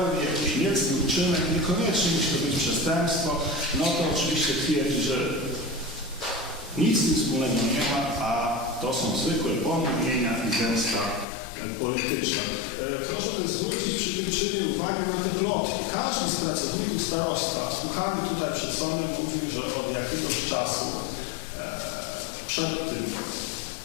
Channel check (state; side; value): drops out; right; at 11.2 s